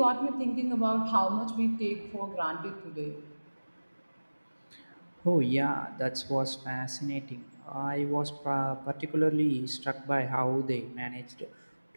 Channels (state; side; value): inverted; both; correlation -1.00